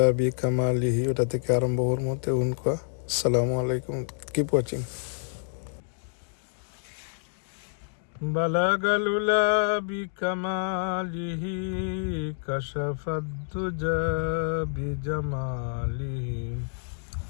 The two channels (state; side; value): silent; right; digital silence